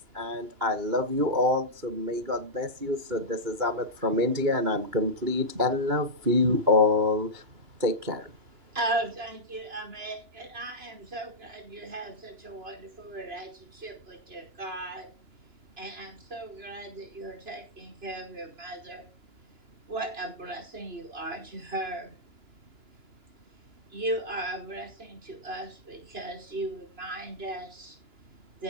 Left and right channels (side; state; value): left; late; 2.9 ms